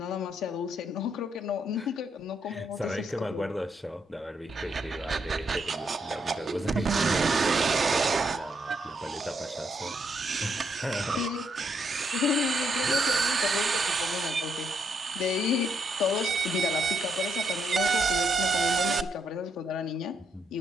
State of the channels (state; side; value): normal; both; correlation 0.76